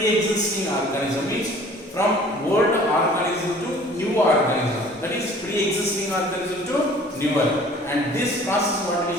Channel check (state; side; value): normal; both; correlation 0.50